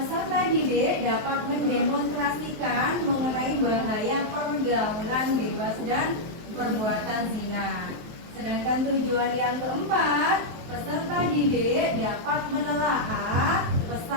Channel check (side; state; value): left; late; 23 ms